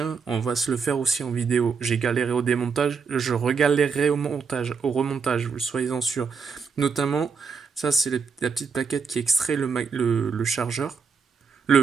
on va se le faire aussi en vidéo. J'ai galéré au démontage, je regalérerai au montage, au remontage, vous soyez-en sûrs. Notamment, ça c'est la petite plaquette qui extrait le chargeur.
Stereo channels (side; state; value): left; quieter; 5.6 dB